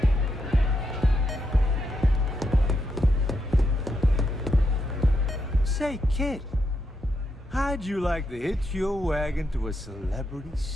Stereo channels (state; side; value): normal; both; correlation 0.81